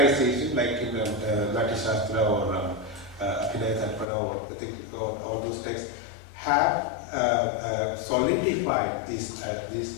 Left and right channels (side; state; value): right; drops out; at 4.0 s